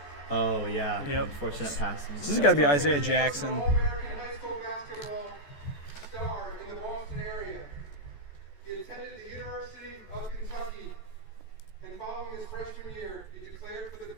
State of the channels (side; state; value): right; late; 14 ms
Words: Oh yeah. Yep. Unfortunate pass. This has got to be Isaiah Jackson. All-American high school basketball star in the Boston area. He attended the University of Kentucky, and following his freshman year, he declared for the